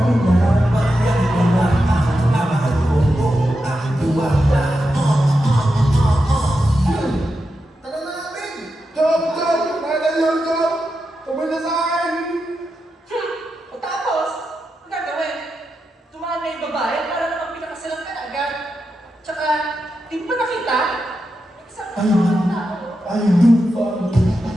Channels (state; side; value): normal; both; correlation 0.88